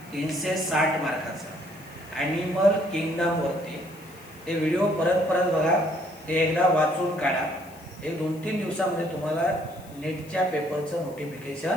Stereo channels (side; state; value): left; noise; hiss, 23 dB below the sound